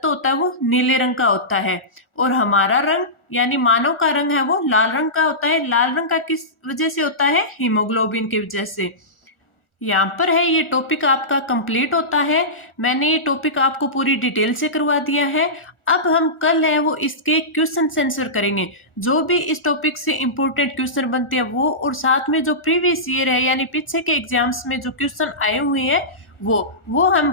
होता है वो नीले रंग का होता है, और हमारा रंग यानी मानव का रंग है वो लाल रंग का होता है। लाल रंग का किस वजह से होता है? हीमोग्लोबिन की वजह से। यहाँ पर है ये टॉपिक आपका कंप्लीट होता है। मैंने ये टॉपिक आपको पूरी डिटेल से करवा दिया है। अब हम कल है वो इसके क्वेश्चन आंसर करेंगे, जो भी इस टॉपिक से इंपॉर्टेंट क्वेश्चन बनते हैं वो, और साथ में जो प्रीवियस ईयर है यानी पीछे के एग्जाम्स में जो क्वेश्चन आए हुए हैं वो हम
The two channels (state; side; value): late; right; 1.4 ms